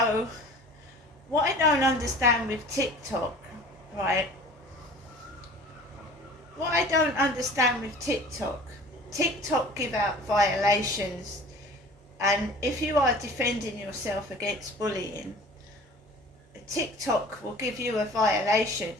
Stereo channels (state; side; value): normal; both; correlation 0.44